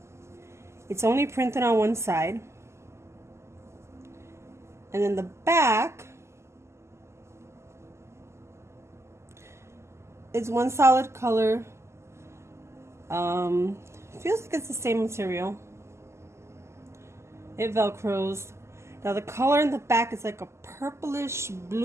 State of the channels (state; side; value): late; left; 0.13 ms